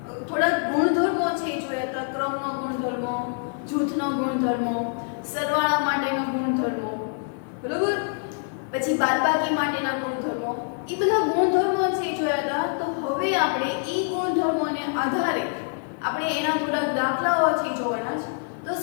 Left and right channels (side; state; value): right; silent; 61 dB below the other